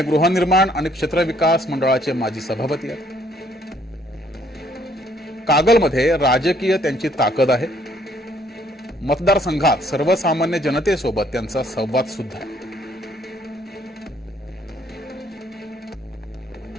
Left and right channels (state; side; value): normal; both; correlation 0.65